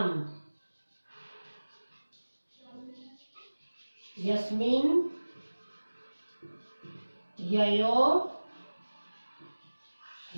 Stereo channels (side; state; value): both; inverted; correlation -1.00